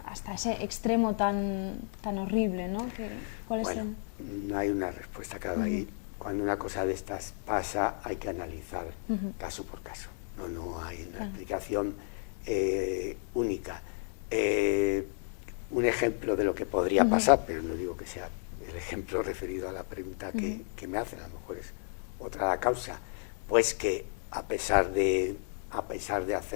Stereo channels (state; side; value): silent; right; digital silence